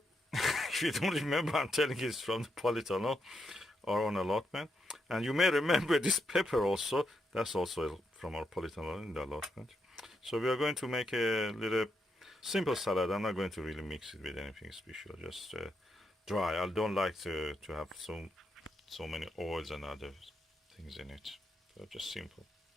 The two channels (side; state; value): both; normal; correlation 0.81